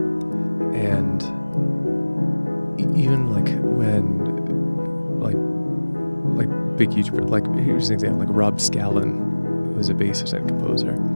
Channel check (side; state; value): both; inverted; correlation -1.00